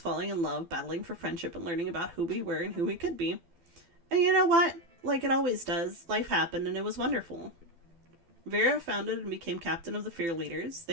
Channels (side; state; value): left; late; 12 ms